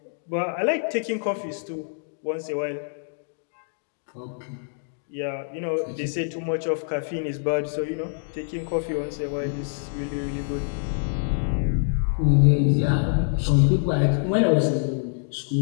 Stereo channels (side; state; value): right; silent; digital silence